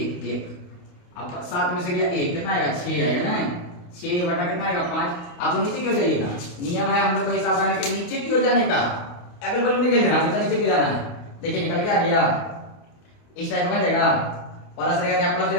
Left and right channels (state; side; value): late; right; 28 ms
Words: 1, अब 7 में से गया 1 कितना आएगा 6 आएगा ना, 6 बटा कितना आएगा 5। आपको नीचे क्यों जाइएगा, नियम है हम लोग का हिसाब लगाने के नीचे क्यों जाने का, अगल बगल नहीं खेलना, हमेशा नीचे क्यों जाना है। देखिए निकल के आ गया, इस टाइप का बन जाएगा, प्लस रहेगा क्या प्लस